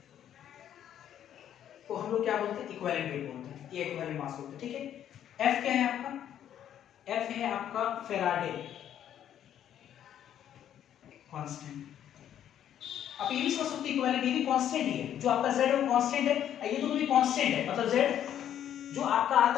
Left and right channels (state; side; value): quieter; right; 10.4 dB